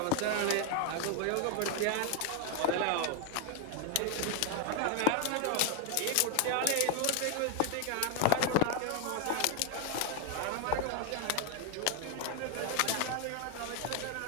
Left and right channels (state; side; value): different; both; correlation 0.00